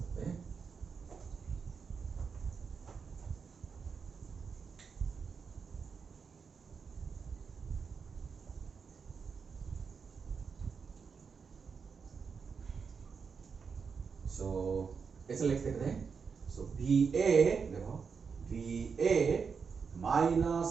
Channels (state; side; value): quieter; left; 5.7 dB